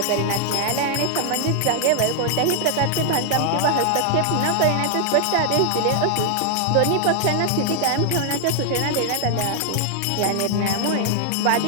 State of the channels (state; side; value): different; both; correlation 0.00